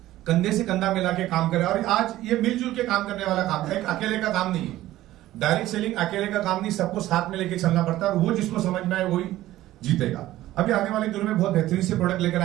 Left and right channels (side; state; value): left; quieter; 15.1 dB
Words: कंधे से कंधा मिला के काम करे। और आज ये मिलजुल के काम करने वाला काम है, एक अकेले का काम नहीं है। डायरेक्ट सेलिंग अकेले का काम नहीं, सबको साथ में लेके चलना पड़ता है, और वो जिसको समझ में आए वही जीतेगा। अभी आने वाले दिनों में बहुत बेहतरीन से प्रोडक्ट लेकर